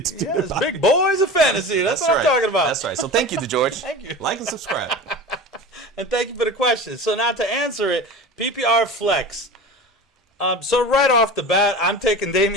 to do. Yes, big boys of fantasy. That's what I'm talking about. That's right. So thank you, DeGeorge. Thank you. Like and subscribe. And thank you for the question. So now to answer it, PPR flex. So right off the bat, I'm taking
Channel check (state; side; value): normal; both; correlation 0.33